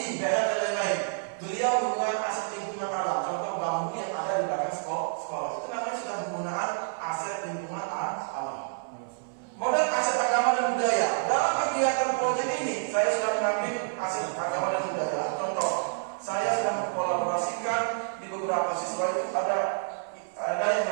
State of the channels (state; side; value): silent; left; 59 dB below the other